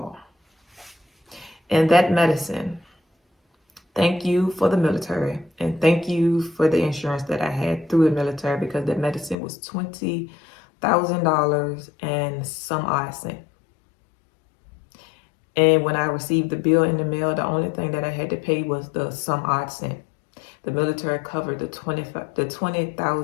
And that medicine, thank you for the military, and thank you for the insurance that I had through the military, because that medicine was $20,000 and some odd cent. And when I received the bill in the mail, the only thing that I had to pay was the some odd cent. The military covered the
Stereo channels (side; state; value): right; drops out; at 9.3 s